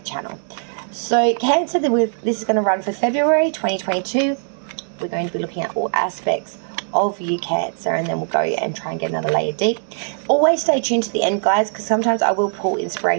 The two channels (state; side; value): silent; left; digital silence